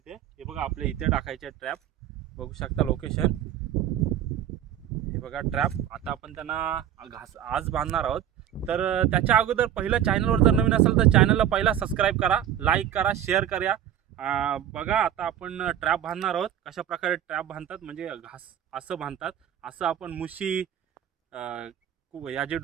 हे बघा, आपले इथे टाकायचे ट्रॅप. बघू शकता लोकेशन, हे बघा ट्रॅप. आता आपण त्यांना आज बांधणार आहोत. तर त्याच्या अगोदर पहिलं चॅनलवर जर नवीन असेल तर चॅनलला पहिला सबस्क्राईब करा, लाईक करा, शेअर करा. बघा, आता आपण ट्रॅप बांधणार आहोत. कशा प्रकारे ट्रॅप बांधतात म्हणजे असं बांधतात. असं आपण मुशी, याची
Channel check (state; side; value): quieter; left; 10.7 dB